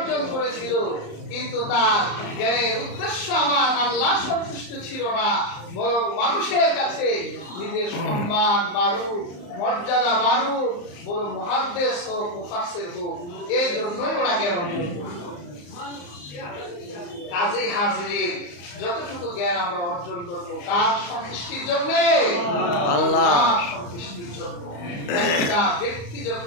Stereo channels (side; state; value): right; late; 34 ms